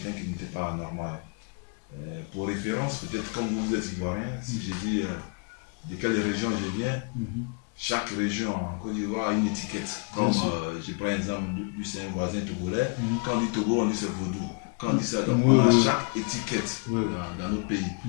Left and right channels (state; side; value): quieter; right; 36.7 dB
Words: qui n'était pas normal. Pour référence, peut-être comme vous êtes ivoirien, si je dis de quelle région je viens, chaque région en Côte d'Ivoire a une étiquette. Comme je prends l'exemple du c'est un voisin togolais, quand on dit Togo, on dit c'est Vaudou. Quand on dit ça, donc on a chaque étiquette dans notre pays.